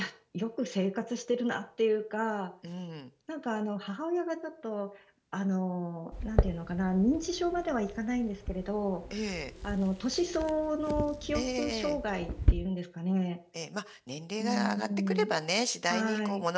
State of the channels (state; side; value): identical; both; correlation 1.00